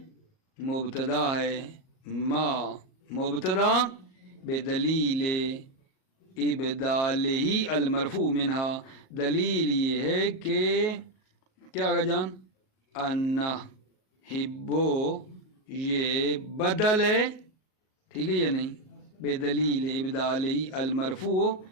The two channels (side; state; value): right; late; 38 ms